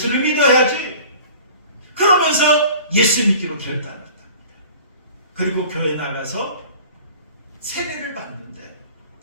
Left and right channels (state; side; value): inverted; both; correlation -0.44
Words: 믿어야지. 그러면서 예수 믿기로 결단했답니다. 그리고 교회 나가서 세례를 받는데